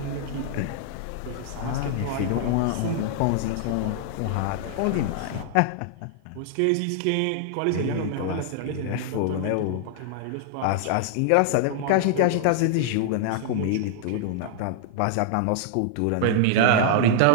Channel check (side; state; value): both; different; correlation -0.01